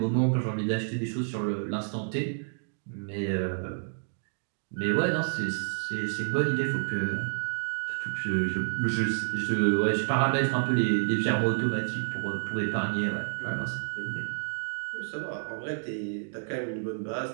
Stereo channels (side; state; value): left; silent; digital silence